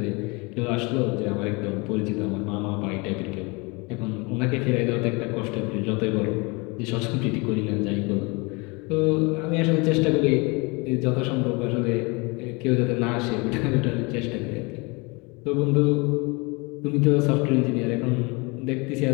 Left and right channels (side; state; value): right; quieter; 28.1 dB